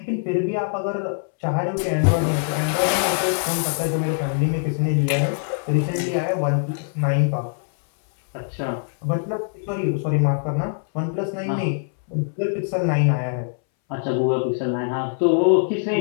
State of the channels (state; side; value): silent; right; 64 dB below the other